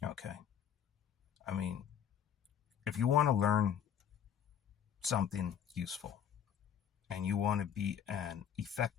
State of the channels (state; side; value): quieter; right; 8.8 dB